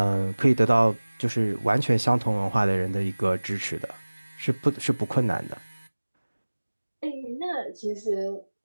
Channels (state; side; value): inverted; both; correlation -1.00